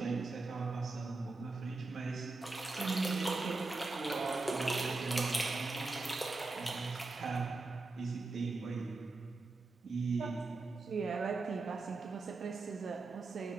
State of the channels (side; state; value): left; quieter; 3.5 dB